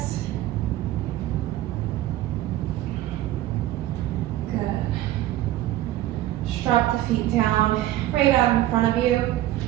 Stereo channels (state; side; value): quieter; left; 14.5 dB